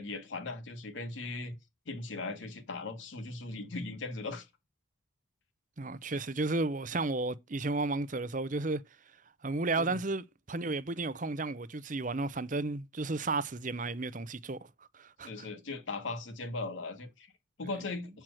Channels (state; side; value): normal; both; correlation 0.24